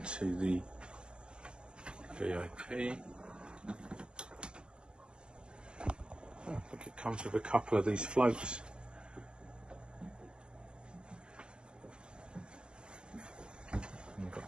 the VIP. Oh, look, it comes with a couple of these floats. We've got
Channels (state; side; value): late; left; 0.052 ms